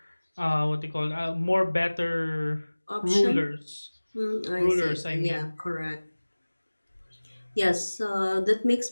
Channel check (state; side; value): inverted; both; correlation -1.00